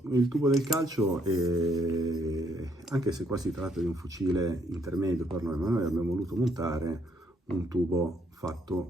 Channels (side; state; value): both; normal; correlation 0.71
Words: Il tubo del calcio anche se qua si tratta di un fucile intermedio per noi, ma noi abbiamo voluto montare un tubo